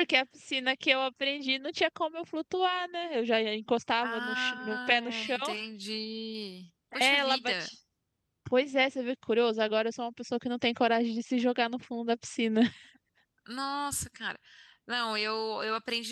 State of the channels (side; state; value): both; identical; correlation 1.00